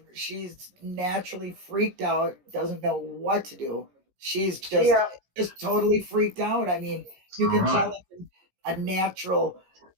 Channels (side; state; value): left; late; 16 ms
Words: naturally freaked out, doesn't know what to do. She's just totally freaked out. I mean, you can tell it's a natural